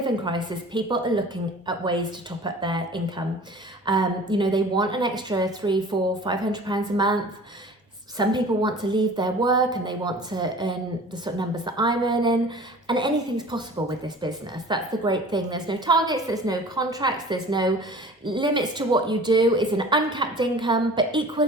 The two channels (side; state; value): both; normal; correlation 0.43